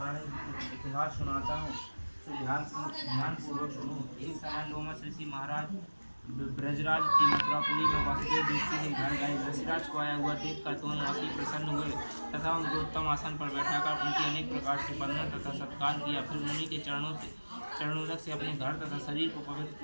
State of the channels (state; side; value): inverted; both; correlation -1.00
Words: इतिहास सुनाता हूँ, तो ध्यानपूर्वक सुनो। एक समय लोमस ऋषि महाराज ब्रजराज की मथुरापुरी में वासुदेव दृष्टि के घर गए। ऋषिराज को आया हुआ देखकर दोनों अति प्रसन्न हुए तथा उनको उत्तम आसन पर बैठाकर उनकी अनेक प्रकार से वंदना तथा सत्कार किया। फिर मुनि के चरणों चरणोदक से अपने घर तथा शरीर को पवित्र